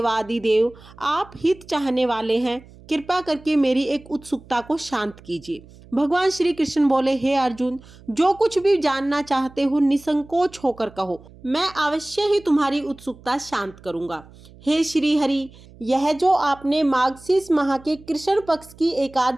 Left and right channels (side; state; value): right; noise; hum, 22 dB below the sound